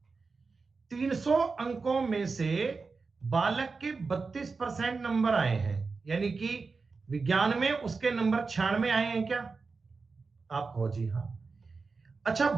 300 अंकों में से बालक के 32% नंबर आए हैं, यानी कि विज्ञान में उसके नंबर 96 आए हैं क्या? आप कहो जी हाँ। अच्छा,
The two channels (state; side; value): quieter; left; 4.4 dB